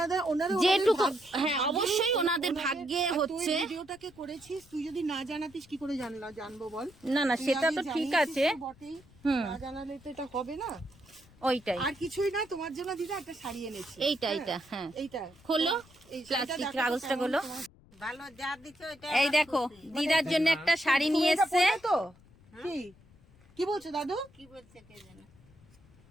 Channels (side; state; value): left; noise; rumble, 26 dB below the sound